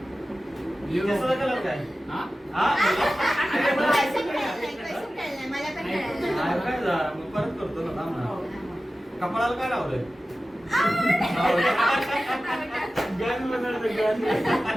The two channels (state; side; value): normal; both; correlation 0.95